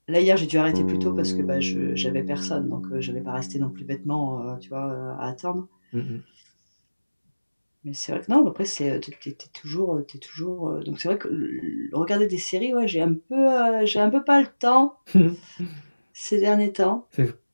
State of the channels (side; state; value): both; inverted; correlation -1.00